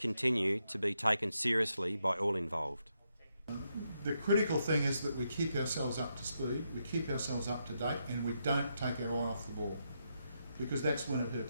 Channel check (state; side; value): inverted; both; correlation -0.81